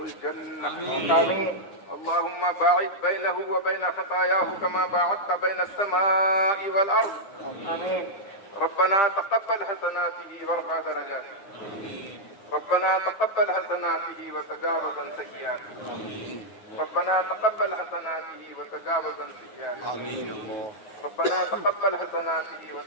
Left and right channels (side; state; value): right; late; 10 ms